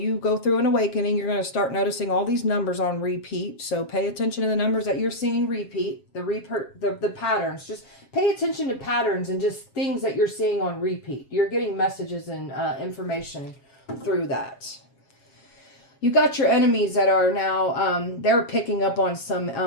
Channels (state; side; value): late; right; 7.4 ms